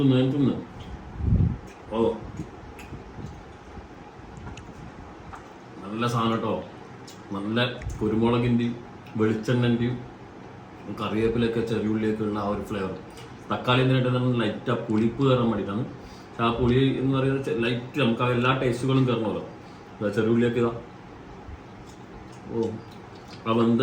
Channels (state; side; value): identical; both; correlation 1.00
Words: ഓ നല്ല സാധനം കേട്ടോ. നല്ല കുരുമുളകിൻ്റെയും വെളിച്ചെണ്ണൻ്റെയും കറിവേപ്പിലൊക്കെ ചെറിയുള്ളിയൊക്കെ ഉള്ള ആ ഒരു ഫ്ലേവർ. തക്കാളി എന്തിനായിട്ട് നമ്മൾ ലൈറ്റ് ആ പുളിപ്പ് കയറാൻ വേണ്ടിയിട്ടാണ്. പക്ഷെ ആ പുളി എന്ന് പറയുന്നത് ലൈറ്റ് നമുക്ക് ആ എല്ലാ ടേസ്റ്റുകളും കയറണമല്ലോ. ചെറുള്ളിയൊക്കെ ഇതാ ഓ ആ വെന്ത